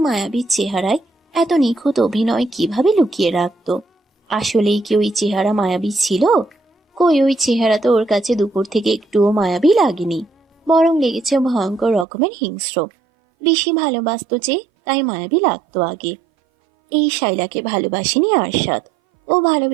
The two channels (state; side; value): drops out; left; at 12.1 s